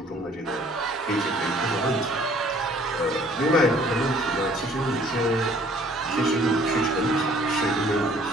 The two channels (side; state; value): both; normal; correlation 0.57